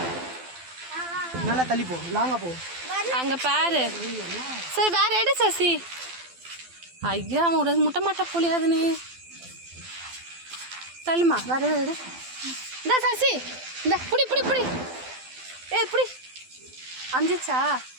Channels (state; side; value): late; left; 12 ms